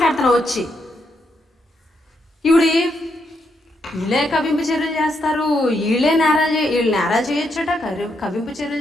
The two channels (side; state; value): both; normal; correlation 0.79